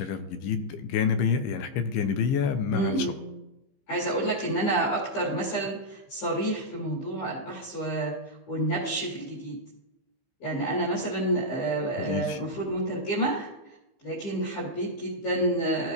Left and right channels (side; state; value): right; late; 15 ms